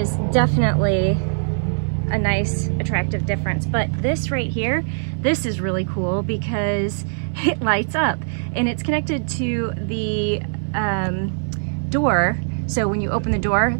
definitely a nice, attractive difference. But this right here, this is really cool because it lights up and it's connected to the door. So when you open the door,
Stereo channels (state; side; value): silent; left; 59 dB below the other